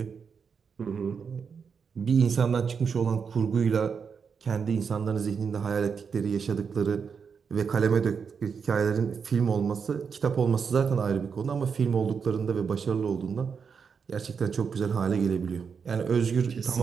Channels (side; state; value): left; quieter; 6.2 dB